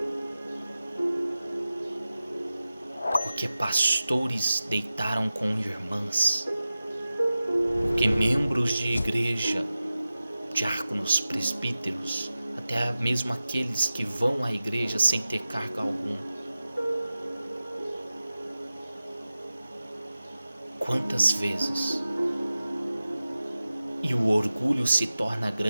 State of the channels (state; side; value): inverted; both; correlation -0.96